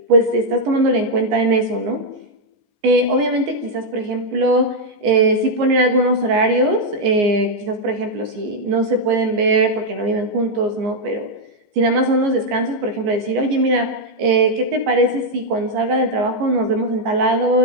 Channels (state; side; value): late; left; 14 ms